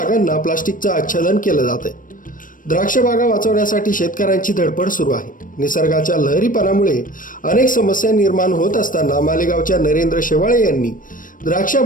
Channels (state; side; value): late; right; 0.39 ms